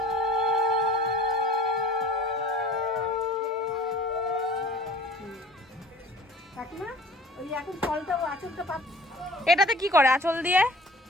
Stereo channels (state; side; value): normal; both; correlation 0.47